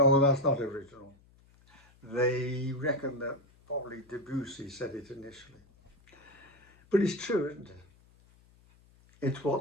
that's not original. They reckon that probably Debussy said it initially. But it's true, isn't it? It's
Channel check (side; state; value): left; noise; hum, 29 dB below the sound